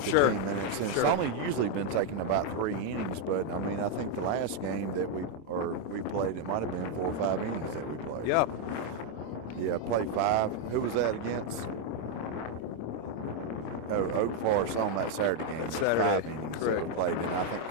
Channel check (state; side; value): late; right; 26 ms